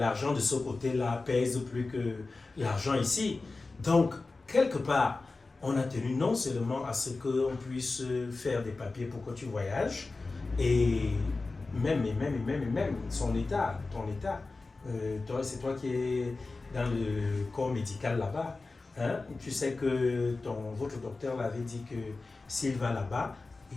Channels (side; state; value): right; quieter; 3.6 dB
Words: de ce côté-là pèse plus que l'argent ici. Donc, quelque part, on a tenu non seulement à ce qu'on puisse faire des papiers pour que tu voyages, et même son état, ton état. C'est toi qui es dans le corps médical là-bas. Hein? Tu sais que votre docteur l'avait dit que s'il va là-bas,